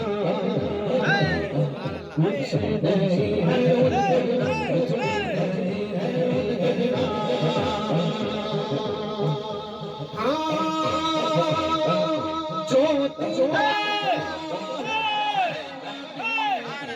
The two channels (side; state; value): both; identical; correlation 1.00